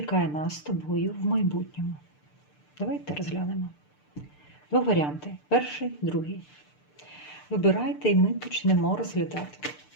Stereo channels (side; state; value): right; late; 6.7 ms